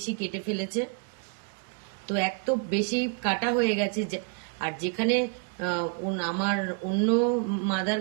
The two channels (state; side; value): quieter; left; 38.3 dB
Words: কেটে ফেলেছে। তো এক তো বেশি কাটা হয়ে গেছে, আর যেখানে আমার অন্য মাদার